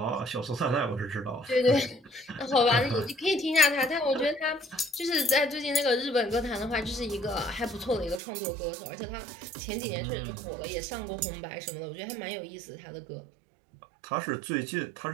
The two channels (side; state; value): left; drops out; at 8.2 s